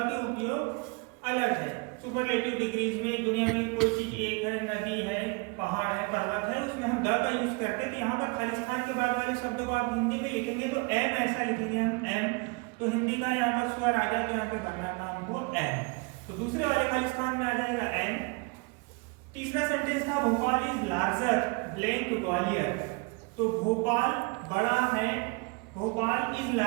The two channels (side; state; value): left; quieter; 29.7 dB